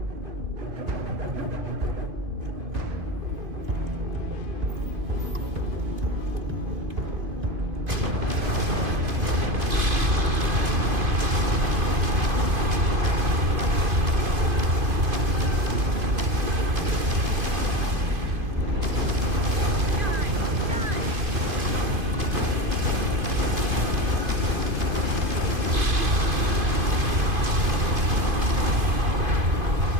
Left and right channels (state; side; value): late; left; 2.5 ms